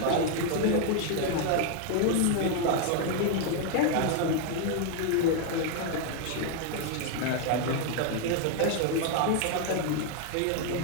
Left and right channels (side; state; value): both; different; correlation 0.01